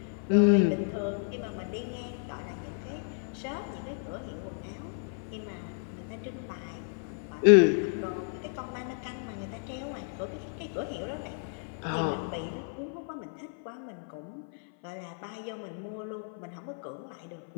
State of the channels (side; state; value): right; silent; 56 dB below the other